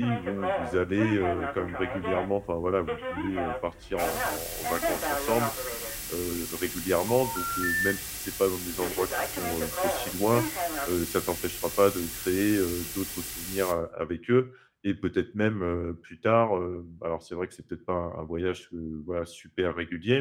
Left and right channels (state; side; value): identical; both; correlation 1.00